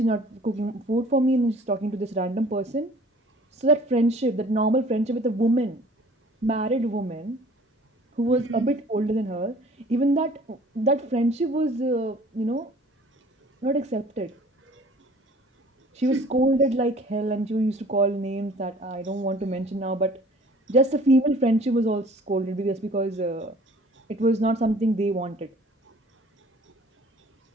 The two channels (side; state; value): both; normal; correlation 0.51